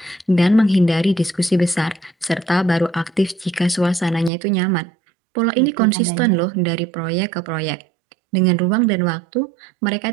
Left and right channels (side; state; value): left; drops out; at 4.3 s